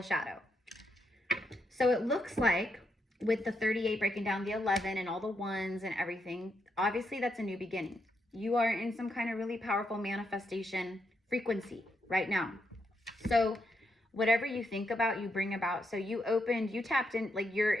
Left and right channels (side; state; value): both; normal; correlation 0.80